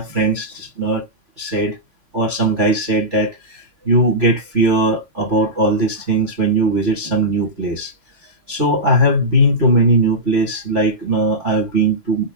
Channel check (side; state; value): left; late; 3.4 ms